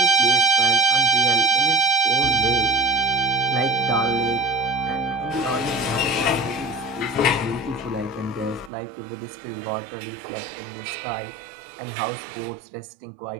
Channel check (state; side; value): drops out; left; at 8.7 s